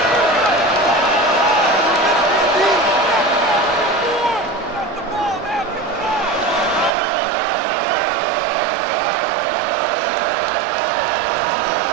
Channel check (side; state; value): left; drops out; at 6.9 s